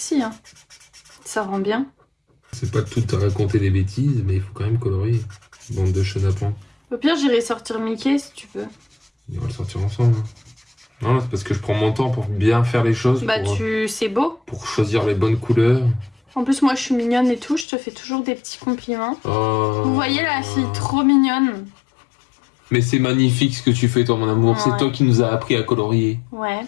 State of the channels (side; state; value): right; drops out; at 17.7 s